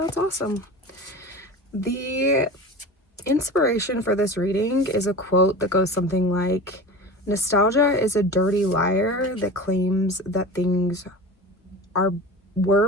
awesome. The inspiration for this reading is a quote that goes something like, "Nostalgia is a dirty liar that claims that things were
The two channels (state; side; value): normal; both; correlation 0.33